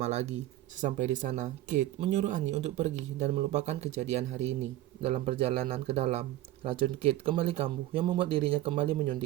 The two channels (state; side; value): quieter; left; 14.7 dB